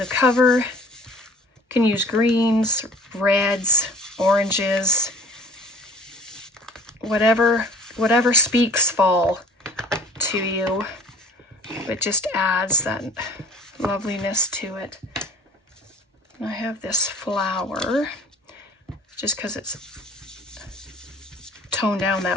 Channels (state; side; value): normal; both; correlation 0.46